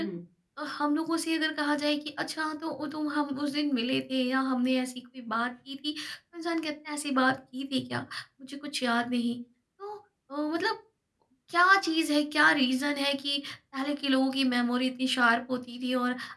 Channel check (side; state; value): both; identical; correlation 1.00